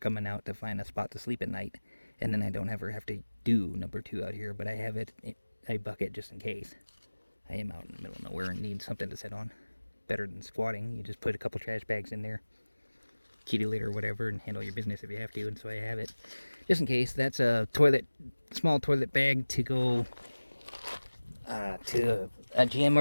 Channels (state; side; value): inverted; both; correlation -1.00